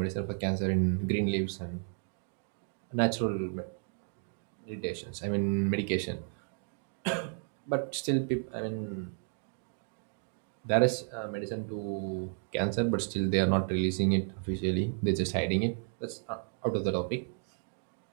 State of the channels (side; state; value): left; silent; 56 dB below the other